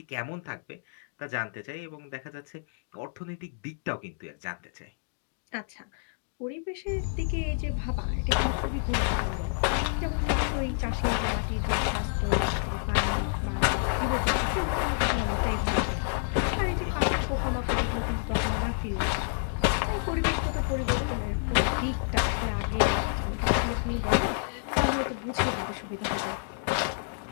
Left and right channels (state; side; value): silent; right; digital silence